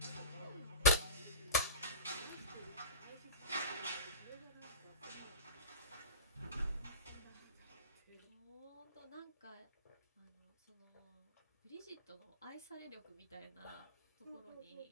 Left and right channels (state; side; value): inverted; both; correlation -0.31